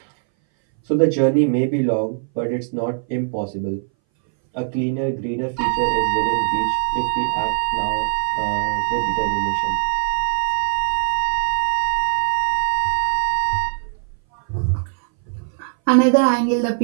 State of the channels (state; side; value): silent; left; 61 dB below the other